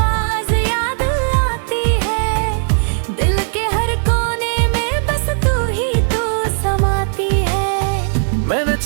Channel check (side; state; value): left; silent; 68 dB below the other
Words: याद आती है। दिल के हर कोने में बस तू ही तू समाती है। मैंने